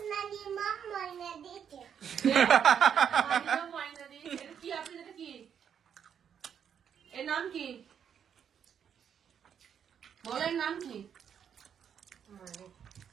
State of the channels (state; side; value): quieter; left; 8.1 dB